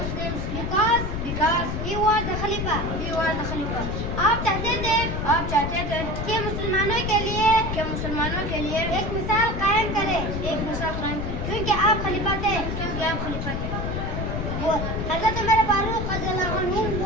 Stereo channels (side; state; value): left; noise; rumble, 3 dB below the sound